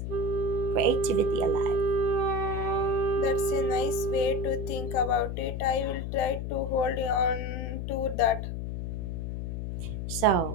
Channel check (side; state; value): left; noise; hum, 4 dB below the sound